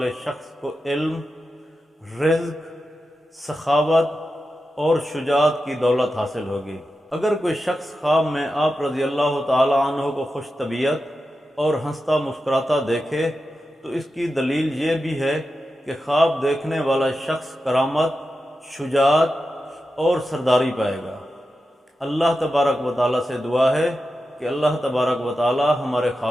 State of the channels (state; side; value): normal; both; correlation 0.90